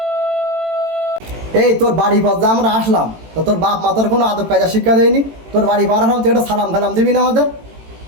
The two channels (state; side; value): late; left; 18 ms